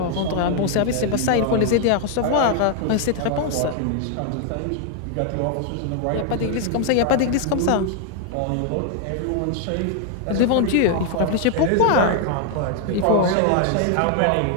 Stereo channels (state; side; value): different; both; correlation 0.00